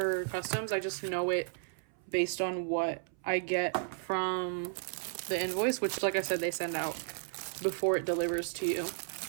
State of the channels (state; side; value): silent; left; 55 dB below the other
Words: customs. I just know it based on what I get from the invoice, which like I said, they send out before it delivers to you.